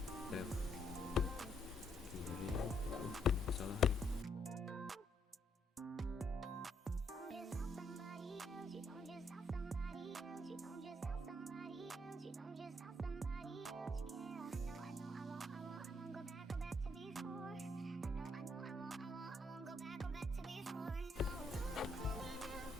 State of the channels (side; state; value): both; normal; correlation 0.73